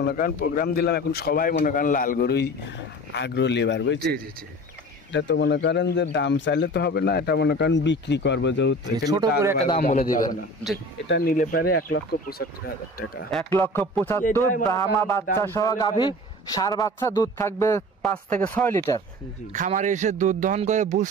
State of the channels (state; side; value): normal; both; correlation 0.38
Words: মনে করেন প্রোগ্রাম দিলাম, এখন সবাই মনে করেন লাল গরুই আগ্রহ লেবার, বুঝছি? জি জি। এটা তো মনে করেন যে দাম চাইলে তো হবে না, এটা মনে করেন বিক্রি করবো, যেহেতু ছোট করে একটা দাম বলে দিবেন। এটা নিলে পারে 1,75,000 টাকা। 1,75,000 ব্রাহ্মা বাচ্চা সহ গাভী, ষাঁড় বাচ্চা, দুধ থাকবে 5 থেকে 6 লিটার। খামারে এসে দুধ দহন করে বুঝ